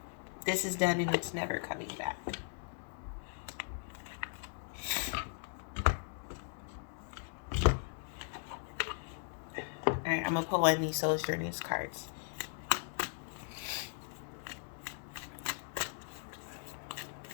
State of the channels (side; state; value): right; silent; digital silence